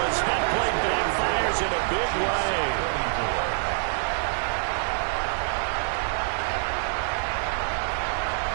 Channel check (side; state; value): left; silent; digital silence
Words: as that play backfires in a big way.